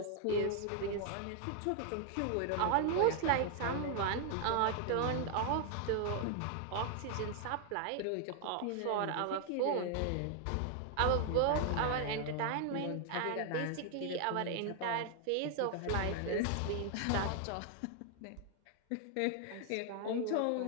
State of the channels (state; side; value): different; both; correlation 0.00